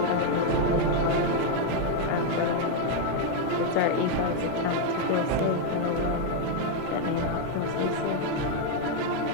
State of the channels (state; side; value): different; both; correlation 0.01